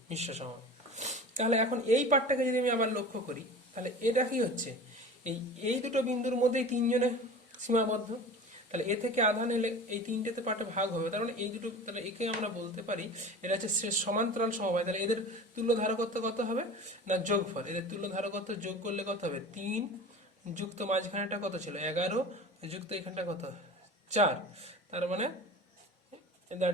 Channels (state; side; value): normal; both; correlation 0.36